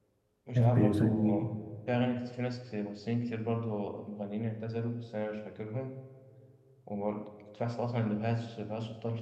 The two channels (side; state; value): both; identical; correlation 1.00